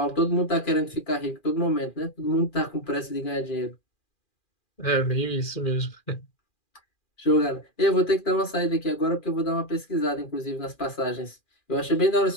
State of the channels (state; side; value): late; right; 2.4 ms